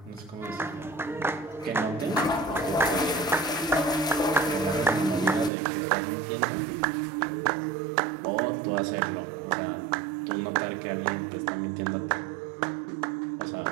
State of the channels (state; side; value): drops out; left; at 5.5 s